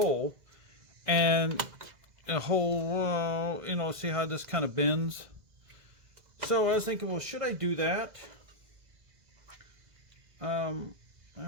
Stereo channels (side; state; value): left; late; 2.0 ms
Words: and a hole, you know, see how this kind of bends? So I was thinking, well, should I do that? I